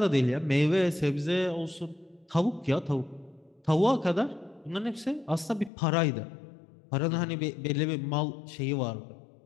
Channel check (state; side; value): drops out; right; at 5.7 s